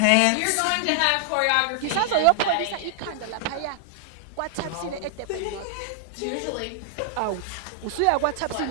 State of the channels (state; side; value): different; both; correlation 0.00